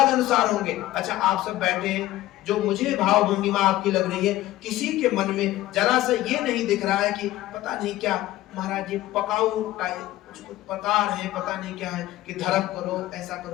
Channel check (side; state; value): right; quieter; 15.7 dB